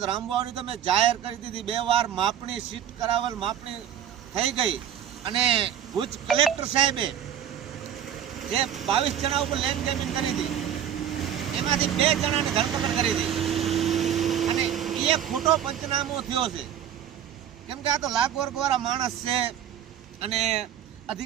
તો રામવાવની તો મેં જાહેર કરી દીધી, 2 વાર માપણી સીટ કરાવેલ, માપણી થઈ ગઈ અને ભુજ કલેક્ટર સાહેબે જે 22 જણા ઉપર લેન્ડ ગ્રેબિંગ કરી હતી એમાંથી 2 જણાની ધરપકડ કરી હતી અને એ ખોટો પંચનામો થયો છે, કેમ કે આ તો લાખ વર્ગવાળા માણસ છે અને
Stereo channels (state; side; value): quieter; left; 10.0 dB